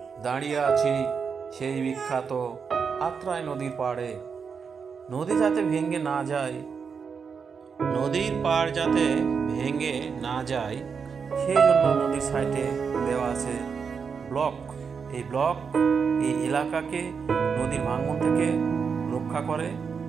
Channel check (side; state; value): left; quieter; 6.0 dB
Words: দাঁড়িয়ে আছি সেই বিখ্যাত আত্রাই নদীর পাড়ে। নদী যাতে ভেঙে না যায়, নদীর পাড় যাতে ভেঙে না যায় সেই জন্য নদীর সাইডে দেওয়া আছে ব্লক। এই ব্লক এই এলাকাকে নদীর ভাঙন থেকে রক্ষা করে।